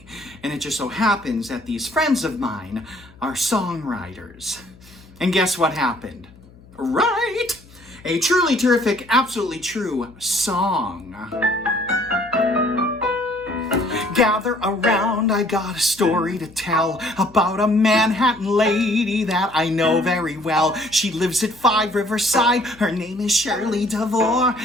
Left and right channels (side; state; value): left; noise; hum, 24 dB below the sound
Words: And it just so happens that these friends of mine are songwriters. And guess what happened? Right! A truly terrific, absolutely true song. Gather around, I got a story to tell about a Manhattan lady that I know very well. She lives at 5 Riverside, her name is Shirley DeVore,